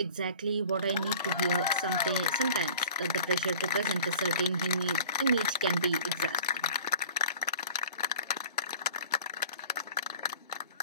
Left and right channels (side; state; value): both; inverted; correlation -0.45